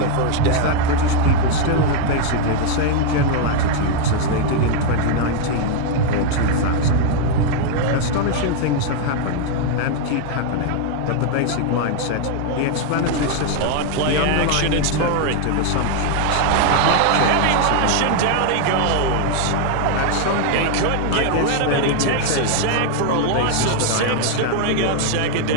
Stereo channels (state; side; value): different; both; correlation 0.00